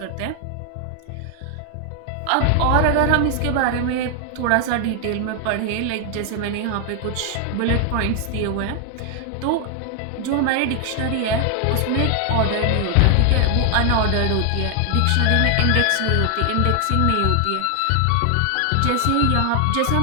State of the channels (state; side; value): different; both; correlation 0.00